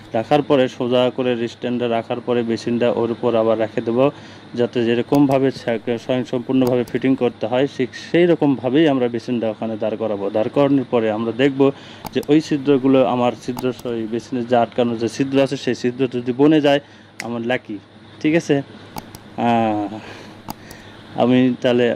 রাখার পরে সোজা করে স্ট্যান্ডটা রাখার পরে বেসিনটা ওর উপর আবার রেখে দেবো, যাতে যেরকমভাবে সম্পূর্ণভাবে ফিটিং করতে হয় ঠিক সেই রকমভাবেই আমরা বেসিনটা ওখানে দাঁড় করাবো। দাঁড় করানোর পরে আমরা দেখব যে ওই ছিদ্রগুলো আমার ওই বেসিনের যে আটকানো যে ছিদ্র আছে সেই ছিদ্র যদি বনে যায় আমার লাকি। ঠিক আছে, আমি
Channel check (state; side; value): identical; both; correlation 1.00